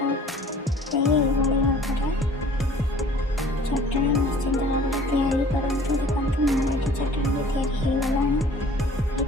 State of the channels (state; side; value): normal; both; correlation 0.50